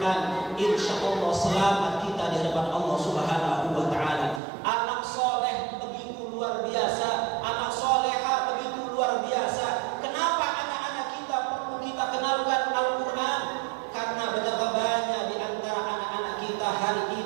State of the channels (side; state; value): left; drops out; at 4.4 s